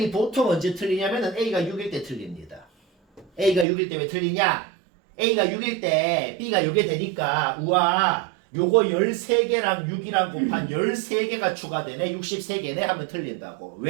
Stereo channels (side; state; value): left; drops out; at 3.7 s